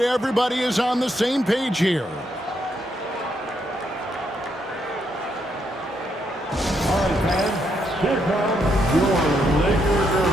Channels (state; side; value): normal; both; correlation 0.77